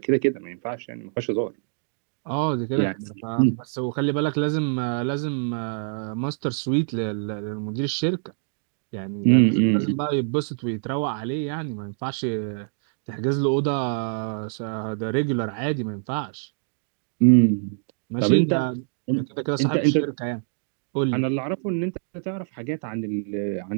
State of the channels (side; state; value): left; silent; digital silence